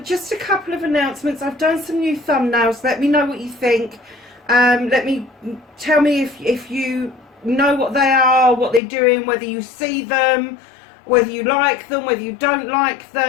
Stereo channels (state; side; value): drops out; right; at 8.8 s